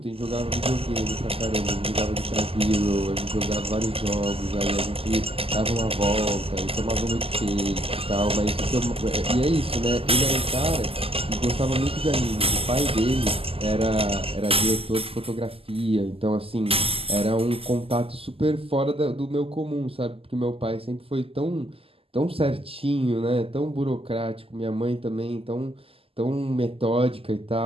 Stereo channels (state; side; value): late; left; 0.28 ms